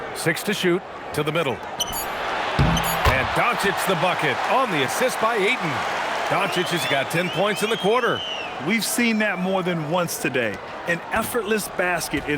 6 to shoot. To the middle. And Doncic the bucket on the assist by Ayton. Doncic has got 10 points in the quarter. We've seen that more than once today. An effortless basket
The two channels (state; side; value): identical; both; correlation 1.00